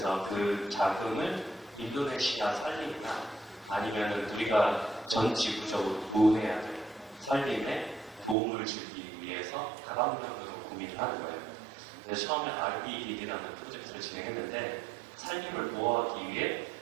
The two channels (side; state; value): left; drops out; at 8.3 s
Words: 그 자금을 인도네시아 산림이나 아니면은 우리가 전 지구적으로 보호해야 될 산림에 도움을 주기 위해서 다방면으로 고민을 하는 거예요. 그래서 처음에 REDD라는 프로젝트를 진행했는데 산림을 보호하기 위해